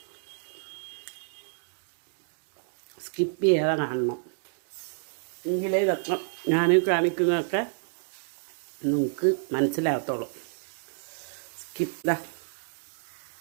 സ്കിപ്പ് ചെയ്യാതെ കാണണം, എങ്കിലേ ഇതൊക്കെ ഞാൻ കാണിക്കുന്നതൊക്കെ നിങ്ങൾക്ക് മനസ്സിലാകത്തുള്ളൂ. സ്കിപ്പ്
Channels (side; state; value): left; silent; digital silence